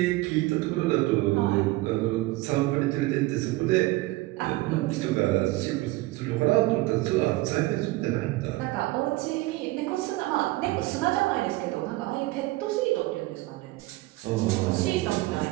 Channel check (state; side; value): quieter; left; 19.7 dB